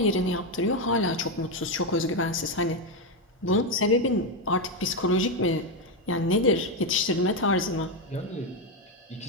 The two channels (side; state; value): both; normal; correlation 0.08